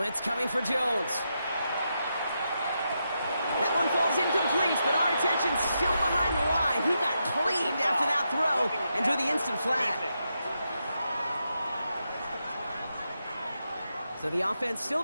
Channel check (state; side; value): inverted; both; correlation -0.84